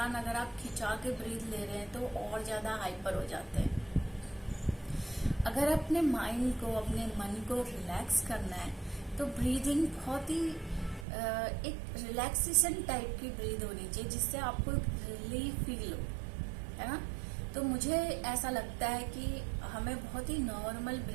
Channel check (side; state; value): left; drops out; at 11.1 s